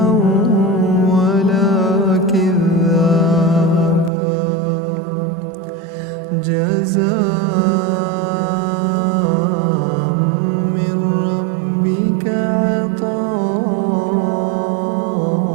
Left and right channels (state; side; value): drops out; left; at 4.1 s